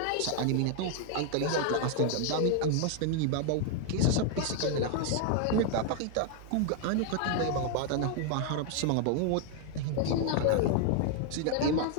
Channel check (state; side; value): different; both; correlation 0.00